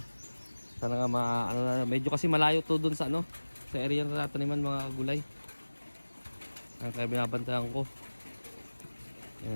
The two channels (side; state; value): both; inverted; correlation -1.00